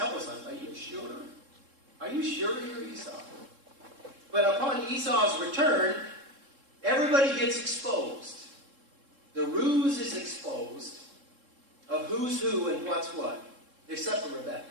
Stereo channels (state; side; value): late; left; 3.7 ms